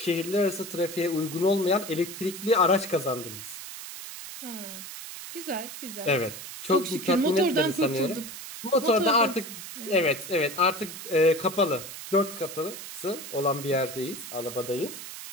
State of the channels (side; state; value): right; noise; hiss, 11 dB below the sound